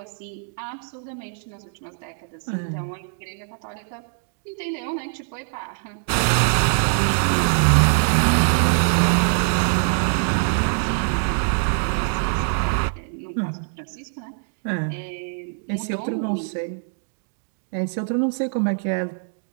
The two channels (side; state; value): left; silent; digital silence